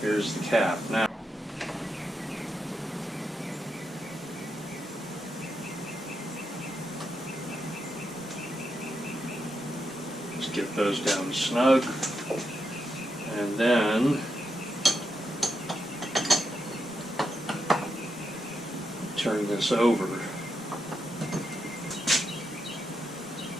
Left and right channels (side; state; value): both; normal; correlation 0.84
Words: the cap. Now, just get those down snug, and then turn this over.